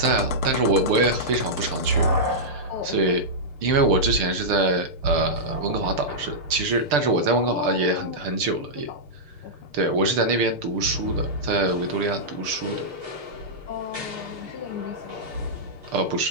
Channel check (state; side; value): late; left; 6.7 ms